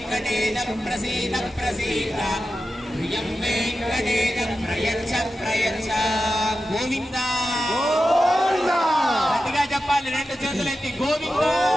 ప్రసీద ప్రసీద ప్రియం వెంకటేశ ప్రయచ్చ ప్రయచ్చ. గోవింద గట్టిగా చెప్పాలి, రెండు చేతులెత్తి గోవింద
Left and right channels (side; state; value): both; normal; correlation 0.92